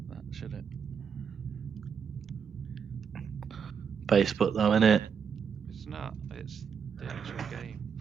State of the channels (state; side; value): quieter; left; 6.9 dB